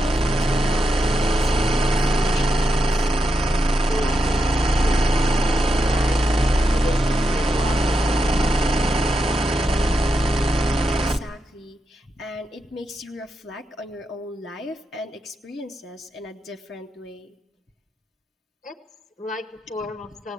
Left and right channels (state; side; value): normal; both; correlation 0.85